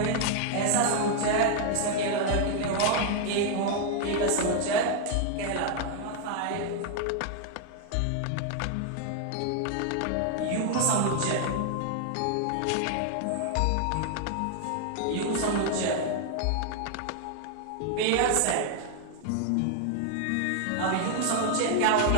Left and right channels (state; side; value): different; both; correlation 0.00